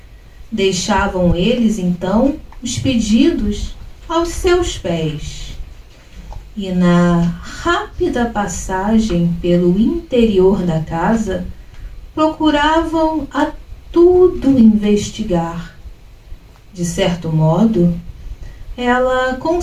Deixavam eles, então, os pedidos aos seus pés. E na rápida passagem pelo interior da casa, procuravam a tudo investigar. De certo modo, ela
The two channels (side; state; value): both; identical; correlation 1.00